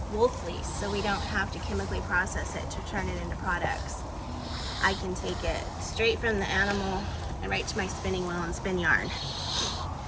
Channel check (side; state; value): both; identical; correlation 1.00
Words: wool fleece, so we don't have to chemically process it to turn it into products. I can take it straight from the animal and right to my spinning wheel and spin yarn.